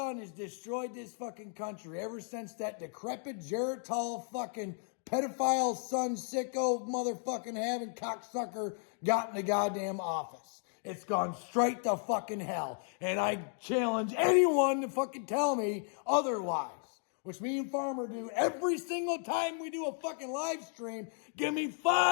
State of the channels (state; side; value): silent; right; 55 dB below the other